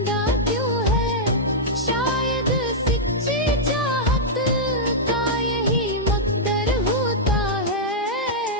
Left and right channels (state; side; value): normal; both; correlation -0.08